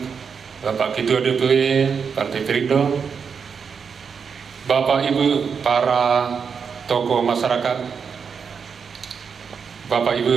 Bapak Ketua DPW Partai Perindo, Bapak Ibu para tokoh masyarakat, Bapak Ibu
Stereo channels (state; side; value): quieter; left; 6.2 dB